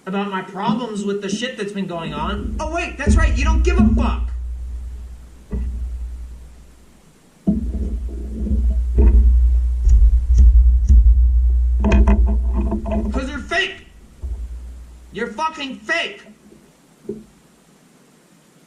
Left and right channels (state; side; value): identical; both; correlation 1.00